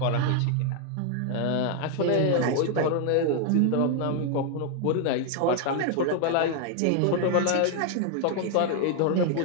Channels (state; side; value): different; both; correlation 0.00